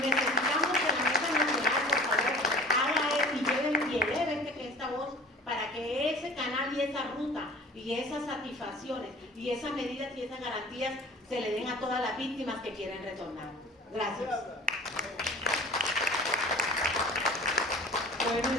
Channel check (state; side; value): normal; both; correlation 0.43